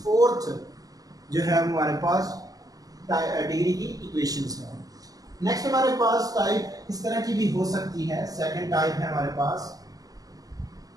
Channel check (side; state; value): left; late; 0.17 ms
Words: फोर्थ जो है हमारे पास डिग्री की इक्वेशंस है। नेक्स्ट हमारे पास टाइप इस तरह की भी हो सकती है। सेकंड टाइप है हमारे पास